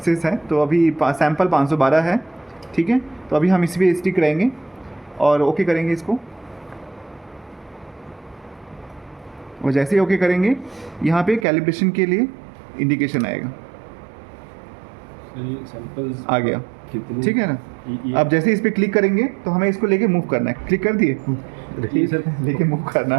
है, तो अभी सैम्पल 512 है, ठीक है। तो अभी हम इस पर स्टिक रहेंगे और ओके करेंगे इसको। और जैसे ही ओके करेंगे यहाँ पे कैलिब्रेशन के लिए इंडिकेशन आएगा, सैंपल्स आ गया, कितनी ठीक है ना। ये अब जैसे इस पे क्लिक करेंगे तो हमें इसको लेके मूव करना है, क्लिक कर दिए, ये सर लेके मूव करना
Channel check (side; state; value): left; drops out; at 11.5 s